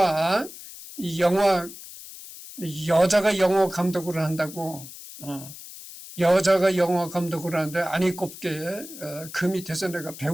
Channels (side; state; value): left; noise; hiss, 14 dB below the sound